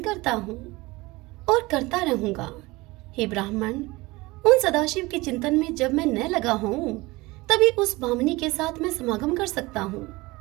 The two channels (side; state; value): left; quieter; 21.8 dB